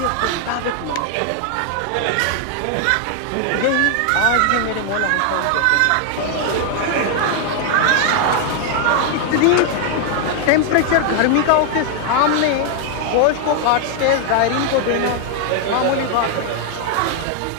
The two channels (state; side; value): different; both; correlation 0.00